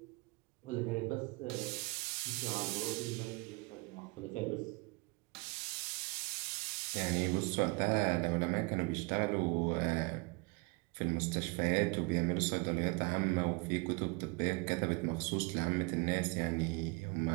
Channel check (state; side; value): quieter; left; 28.5 dB